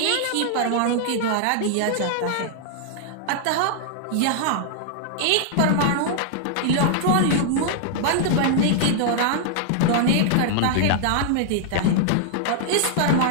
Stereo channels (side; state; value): both; different; correlation -0.01